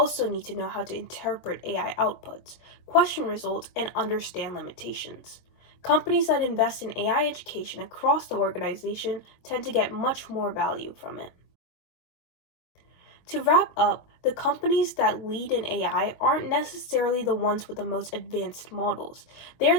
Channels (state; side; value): late; right; 23 ms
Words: need to know how to interpret AI outputs, question results, and understand limitations. Companies that invest in AI education across the organization tend to get much more value from it. To wrap up, the companies that lead in AI aren't necessarily the ones with the most advanced models. They're